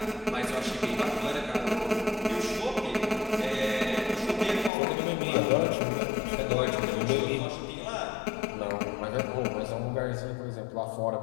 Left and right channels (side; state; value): right; drops out; at 4.7 s